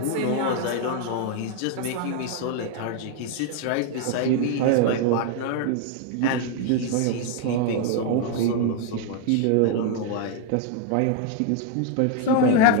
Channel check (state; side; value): different; both; correlation 0.01